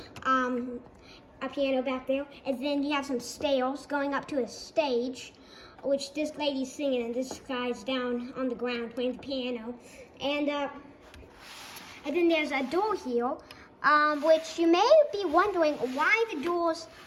a piano back there, and then you have some stairs going up to a stage, which this lady's singing, and this guy's down on the ground playing the piano. And then there's a door here, which you may be wondering why the doors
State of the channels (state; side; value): identical; both; correlation 1.00